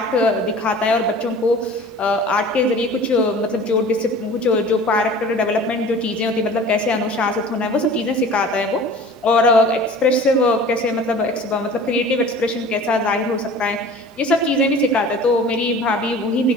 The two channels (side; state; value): both; normal; correlation 0.43